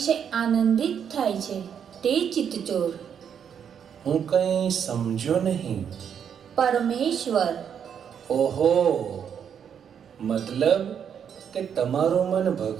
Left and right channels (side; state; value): left; quieter; 8.0 dB